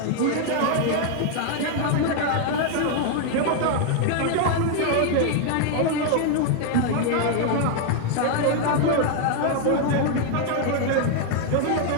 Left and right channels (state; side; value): different; both; correlation 0.00